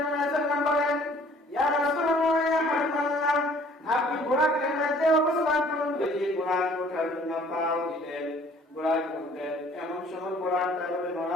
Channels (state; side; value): normal; both; correlation 0.56